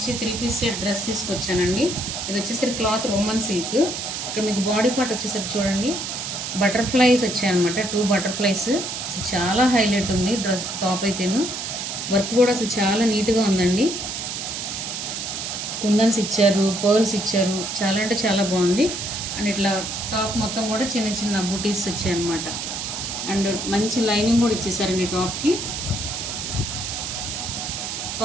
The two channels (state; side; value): noise; right; hiss, 5 dB below the sound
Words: 3-piece సెట్ డ్రెస్ తీసుకొచ్చానండి. ఇది వచ్చేసరికి క్లాత్ రోమన్ సిల్క్. ఇక్కడ మీకు బాడీ పార్ట్ వచ్చేసరికి చూడండి, బటర్ఫ్లైస్ వచ్చాయన్నమాట. 2 బటర్ఫ్లైస్. అసలు చాలా హైలైట్ ఉంది డ్రెస్. టాప్ అయితేను వర్క్ కూడా అసలు చాలా నీట్గా ఉందండి. కుందన్స్ ఇచ్చారు, పర్ల్స్ ఇచ్చారు, చాలా అంటే చాలా బాగుంది. అండ్ ఇట్లా టాప్ మొత్తం కూడా చిన్న చిన్న బూటీస్ వచ్చాయన్నమాట. అండ్ మంచి లైనింగ్ కూడా ఇచ్చేసారండి టాప్కి